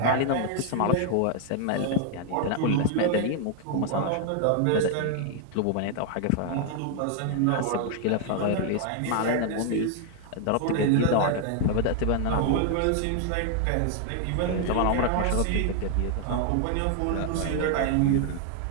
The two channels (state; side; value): different; both; correlation 0.00